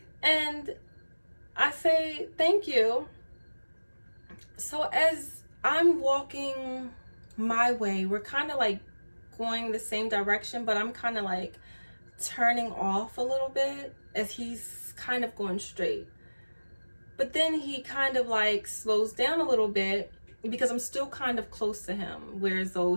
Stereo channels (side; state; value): both; inverted; correlation -1.00